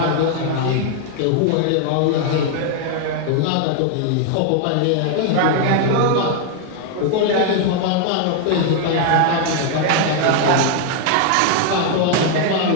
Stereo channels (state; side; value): different; both; correlation 0.00